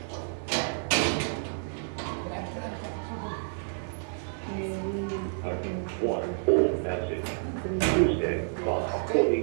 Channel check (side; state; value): left; silent; 58 dB below the other